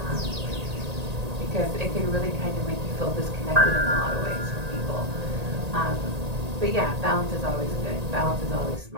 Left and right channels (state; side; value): late; left; 1.8 ms